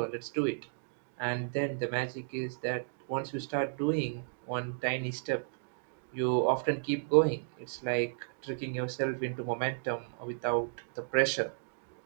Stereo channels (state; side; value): silent; left; digital silence